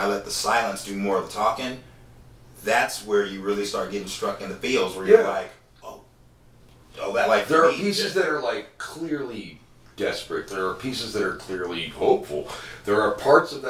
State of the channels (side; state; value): both; identical; correlation 1.00